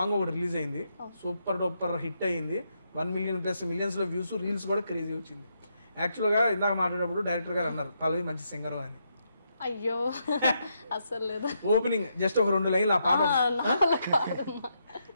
ఒకటి రిలీజ్ అయింది, సూపర్ డూపర్ హిట్ అయ్యింది. 1 మిలియన్ ప్లస్ మిలియన్స్ లో వ్యూస్, రీల్స్ కూడా క్రేజీ వచ్చింది. యాక్చువల్గా ఇందాక మాట్లాడేటప్పుడు డైరెక్టర్ గారు అన్నారు పల్లవి మంచి సింగర్ అని. అయ్యో అసలు లేదు. ఓపెనింగ్ జస్ట్ ఒక 2 లైన్లు ఆ పాట,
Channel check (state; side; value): inverted; both; correlation -0.80